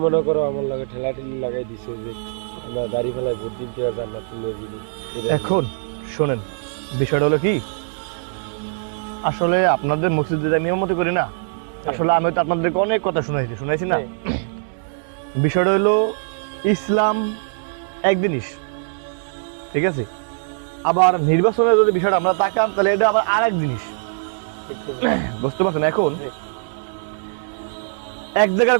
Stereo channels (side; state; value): left; silent; digital silence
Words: মনে করো আমার লাগে ঠেলা ঠেলি লাগাই দিছে যে আমরা দাড়ি ফেলায় ভোট দিতে জান্নাত তুলে দিই। এখন শোনেন, বিষয়টা হলো কি, আসলে আপনাদের মসজিদে নিয়ম মতো করি না, আসলে আমি তো আপনাদেরকে অনেক কথা শুনাইছি না। বিষয়টা হলো ইসলাম এক জিনিস, ঠিক আছে, আবার নির্বাচনের যদি বিষয়টা আমরা তাকান তাহলে এটা আবার আরেক জিনিস, বুঝতে পারছেন? এখন এক জায়গার